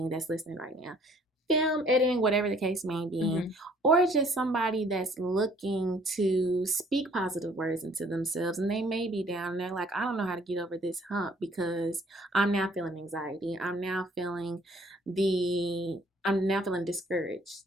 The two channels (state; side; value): normal; both; correlation 0.59